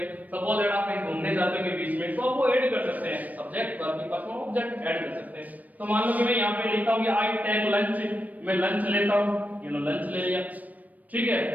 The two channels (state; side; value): late; left; 0.077 ms